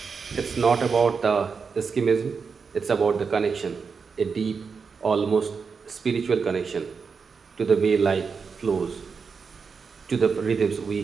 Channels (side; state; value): left; quieter; 5.5 dB